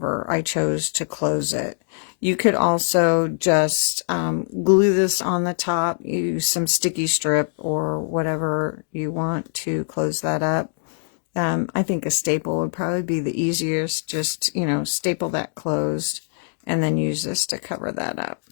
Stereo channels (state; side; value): silent; right; digital silence